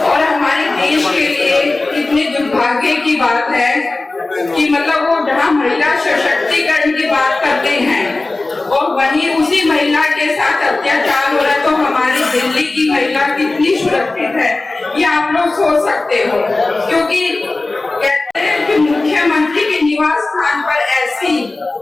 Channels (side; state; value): right; quieter; 3.2 dB